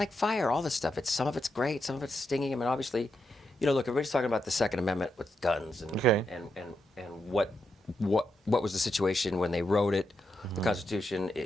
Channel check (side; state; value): both; normal; correlation 0.84